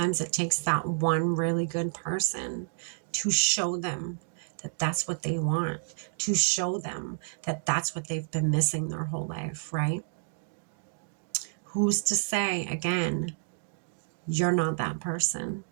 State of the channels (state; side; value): silent; left; digital silence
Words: it takes that one really good person to show them that that's what they want, to show them that that's what they've been missing their whole life, right? Who's to say, again, you're not that person?